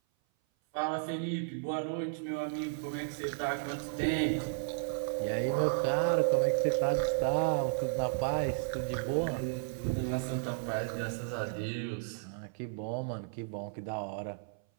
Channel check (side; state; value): left; silent; 55 dB below the other